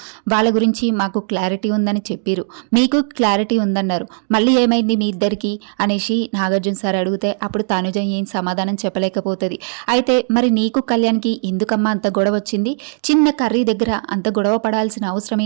వాళ్ళ గురించి మాకు క్లారిటీ ఉందని చెప్పారు, మీకు క్లారిటీ ఉందన్నారు, మళ్ళీ ఏమైంది మీ ఇద్దరికి అనేసి నాగార్జున సార్ అడిగితే అప్పుడు తనుజ ఏం సమాధానం చెప్పలేకపోతుంది. అయితే మరి నీకు కళ్యాణ్కి ఎందుకమ్మా అంత గొడవ వచ్చింది, చిన్న కర్రీ దగ్గర అంత గొడవ పడాల్సిన అవసరం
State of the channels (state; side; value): silent; left; digital silence